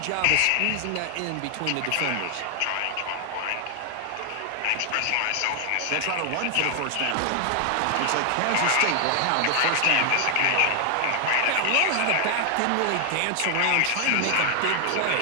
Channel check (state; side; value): different; both; correlation 0.00